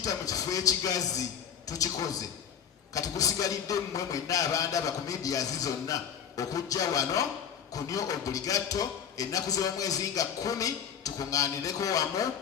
mu kifo ekigazi tukikoze. Kati kusigalidde mmwe mwenna abandaba ku media zonna okujja wano ku New Obligato ennaku z'omwezi nga 10 tukuŋŋaanireko wamu,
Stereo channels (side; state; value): right; quieter; 8.1 dB